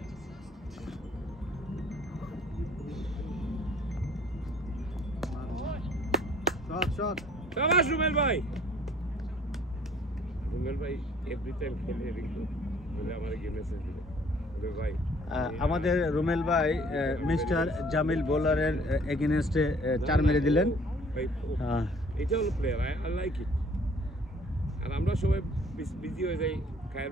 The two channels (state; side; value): normal; both; correlation 0.56